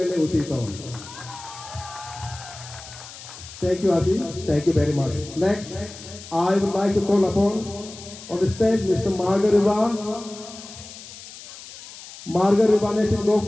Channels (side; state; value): left; noise; hiss, 15 dB below the sound